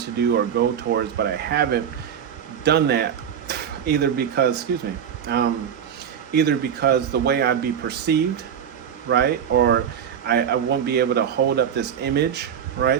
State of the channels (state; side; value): quieter; left; 8.5 dB